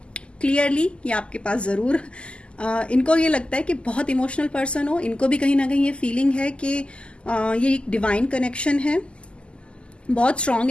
clearly ये आपके पास जरूर इनको ये लगता है कि बहुत इमोशनल पर्सन हो, इनको भी कहीं ना कहीं ये फीलिंग है कि ये एक डिवाइन कनेक्शन है, बहुत स्ट्रांग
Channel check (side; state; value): right; late; 0.052 ms